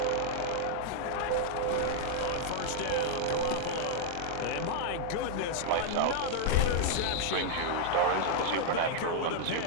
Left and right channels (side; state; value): both; different; correlation 0.00